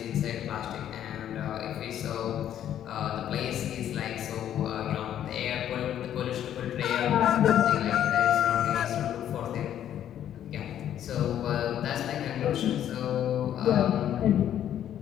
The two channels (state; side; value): quieter; right; 10.6 dB